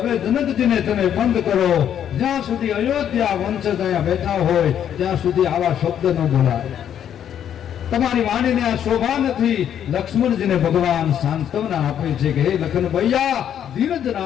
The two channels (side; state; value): right; quieter; 9.6 dB